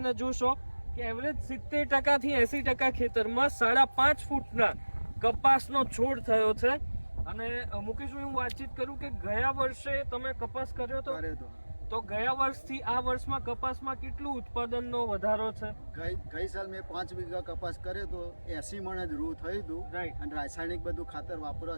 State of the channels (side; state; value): both; inverted; correlation -1.00